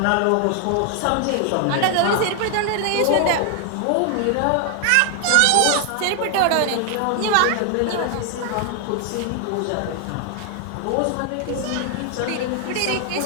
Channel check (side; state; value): both; different; correlation 0.00